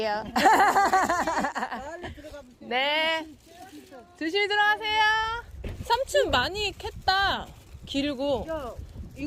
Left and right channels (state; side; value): identical; both; correlation 1.00